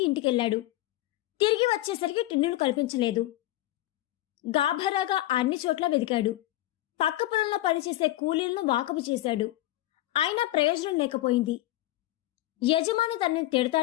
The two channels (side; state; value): right; quieter; 16.1 dB